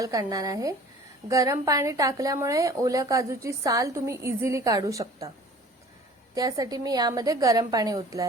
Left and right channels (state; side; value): normal; both; correlation 0.47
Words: काढणार आहे। गरम पाणी टाकल्यामुळे ओल्या काजूची साल तुम्ही इझिली काढू शकता। त्यासाठी मी यामध्ये गरम पाणी ओतले